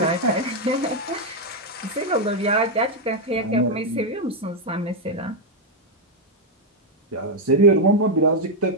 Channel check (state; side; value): normal; both; correlation 0.01